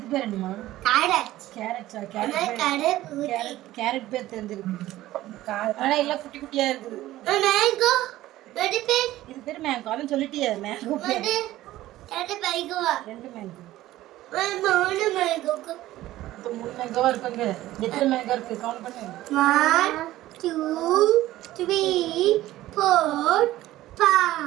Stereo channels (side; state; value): left; quieter; 15.5 dB